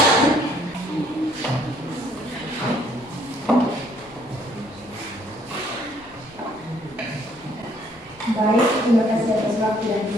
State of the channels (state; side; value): normal; both; correlation 0.64